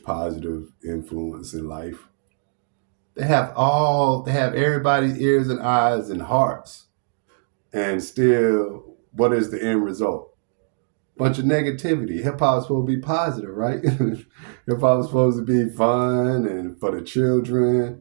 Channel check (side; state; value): left; silent; digital silence